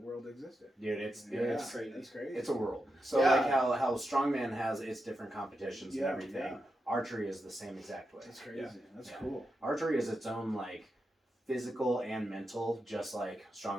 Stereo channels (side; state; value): both; normal; correlation 0.87